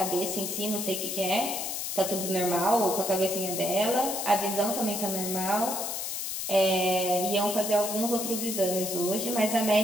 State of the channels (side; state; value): left; noise; hiss, 3 dB below the sound